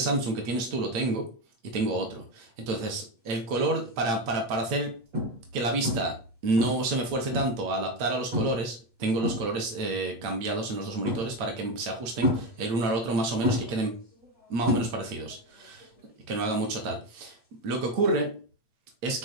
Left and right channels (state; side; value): late; left; 8.5 ms